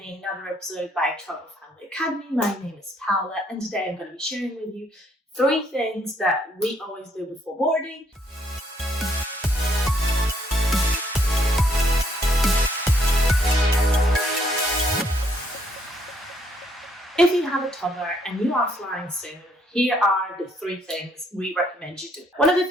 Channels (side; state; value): both; normal; correlation 0.69